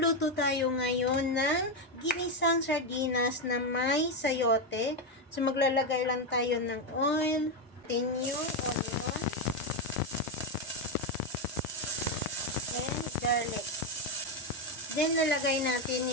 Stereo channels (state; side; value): normal; both; correlation 0.07